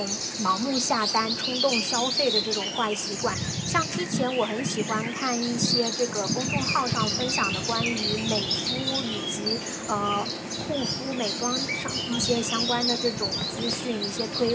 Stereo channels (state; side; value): identical; both; correlation 1.00